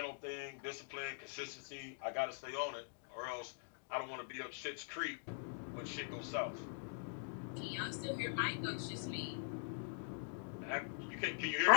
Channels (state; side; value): silent; right; digital silence